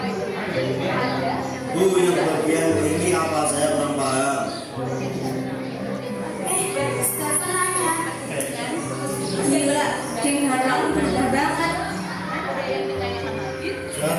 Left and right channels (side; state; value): both; identical; correlation 1.00